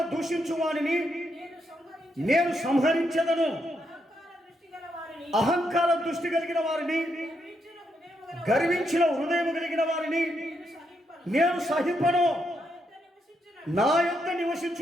దూషించు వారిని నేను సంహరించదను. అహంకార దృష్టి కలిగిన వారిని, గర్వించిన హృదయము కలిగిన వారిని నేను సహింపను. నా యొద్ద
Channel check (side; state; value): both; normal; correlation 0.79